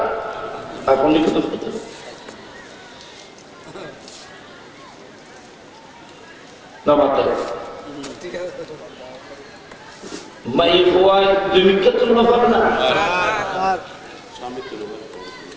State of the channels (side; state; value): both; identical; correlation 1.00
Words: এখন কিন্তু না মাত্র মাই ফোয়ায় 2 ক্ষেত্র পাবে না,